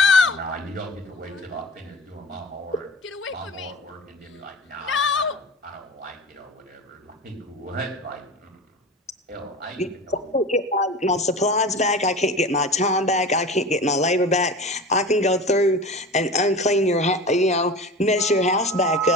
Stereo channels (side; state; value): both; normal; correlation 0.34